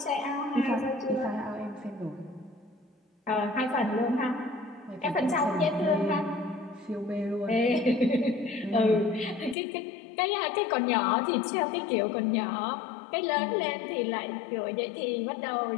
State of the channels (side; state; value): right; drops out; at 9.6 s